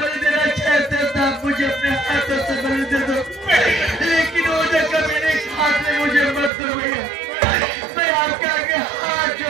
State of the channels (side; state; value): left; drops out; at 6.5 s